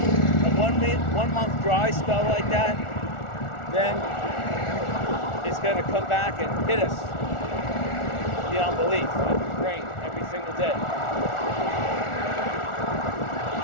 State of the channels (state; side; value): late; right; 1.4 ms